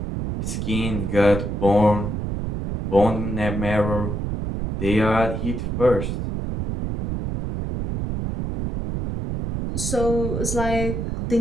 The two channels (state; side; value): noise; right; rumble, 3 dB below the sound